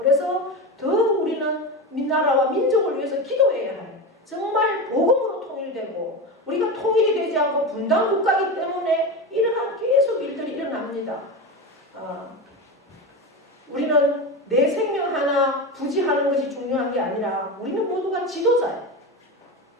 더 우리는 나라와 민족을 위해서 기도해야 할, 정말 복음으로 통일되고, 우리가 통일이 되지 않고 분단 국가이기 때문에 이러한 계속 일들이 일어납니다. 우리는 내 생명 하나 부지하는 것이 중요한 게 아니라 우리는 모두가 지도자예요.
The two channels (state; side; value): normal; both; correlation 0.21